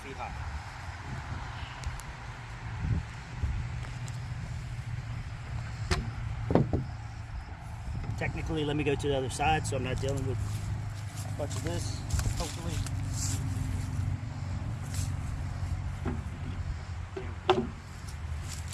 high. Technically, let me go to the other side so I'm not dealing with a bunch of this, hopefully.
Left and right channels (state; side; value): identical; both; correlation 1.00